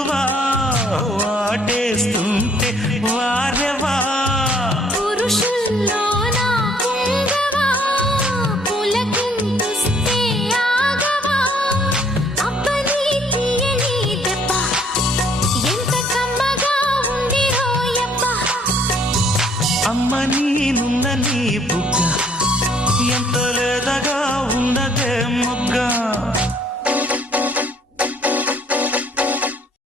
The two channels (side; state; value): both; normal; correlation 0.62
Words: వాటేస్తుంటే వారెవా పురుషుల్లోన పొంగవా పులకింతుస్తే ఆగవా అబ్బని తీయని దెబ్బ ఎంత కమ్మగా ఉంది రోయప్ప అమ్మ నీనున్న నీ బుగ్గ ఎంత లేదగా ఉన్నదే మొగ్గ